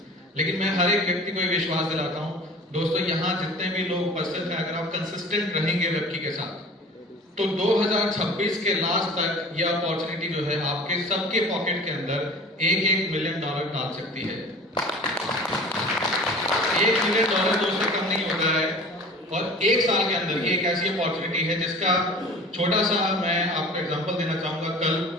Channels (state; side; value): normal; both; correlation 0.42